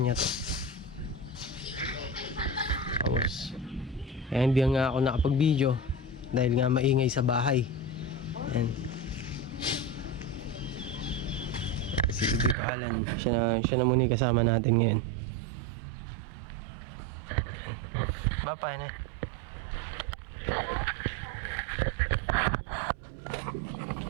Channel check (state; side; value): drops out; left; at 12.6 s